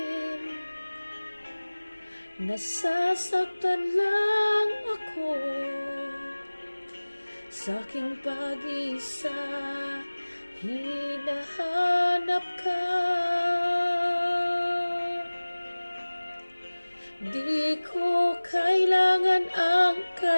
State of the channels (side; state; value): both; inverted; correlation -1.00